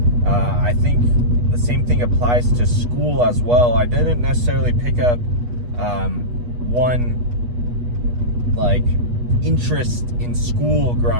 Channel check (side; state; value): left; late; 8.3 ms